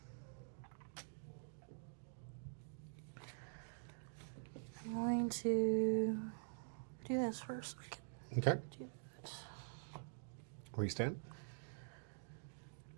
I'm going to do this first. I can Okay. do that. Where you stand?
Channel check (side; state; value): left; silent; digital silence